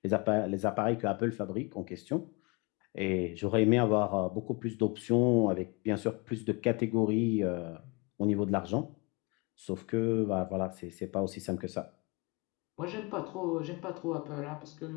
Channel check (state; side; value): quieter; right; 29.1 dB